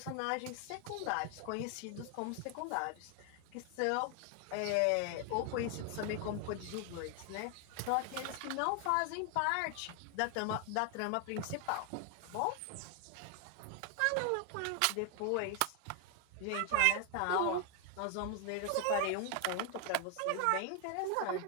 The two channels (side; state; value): both; different; correlation 0.00